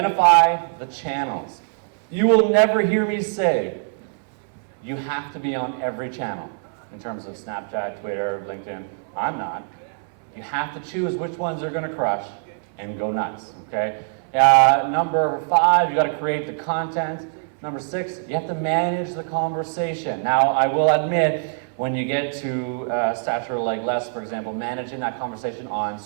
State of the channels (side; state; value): left; silent; 63 dB below the other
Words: the channels. You will never hear me say, you have to be on every channel, in terms of Snapchat, Twitter, LinkedIn. I'm not. You have to choose which ones are going to crush and go nuts, okay? Number five, you got to create the content. Number six, you have to manage the conversation. Now, I will admit, when you get to stature like Les, for example, managing that conversation on